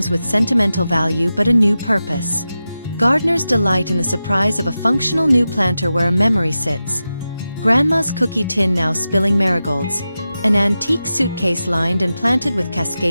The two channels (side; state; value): both; inverted; correlation -0.92